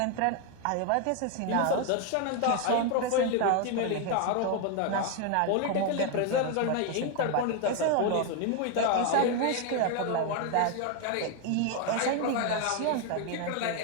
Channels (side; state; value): both; different; correlation 0.01